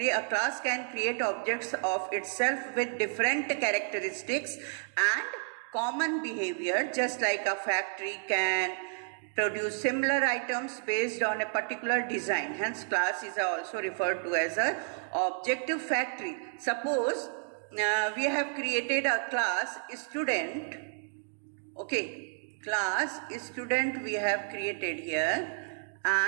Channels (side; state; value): left; silent; 57 dB below the other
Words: A class can create objects of itself with different characteristics and common behavior, just like a factory can produce similar items based on a particular design. Hence, class is also referred to as a object factory. Suppose we have created a class student. Okay, class student we have created here,